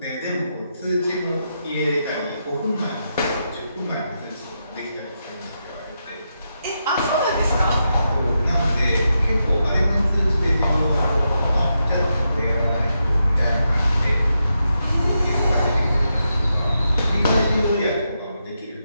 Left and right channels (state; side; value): inverted; both; correlation -0.85